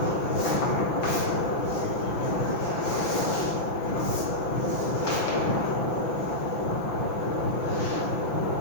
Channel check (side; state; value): right; late; 5.9 ms